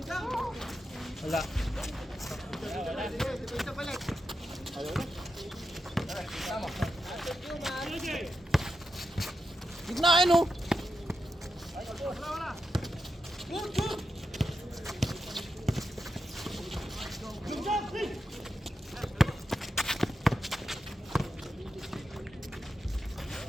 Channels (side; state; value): both; normal; correlation 0.88